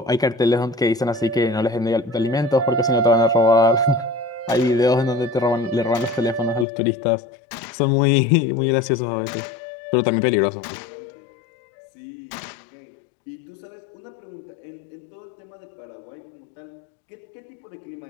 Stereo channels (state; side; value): drops out; right; at 6.7 s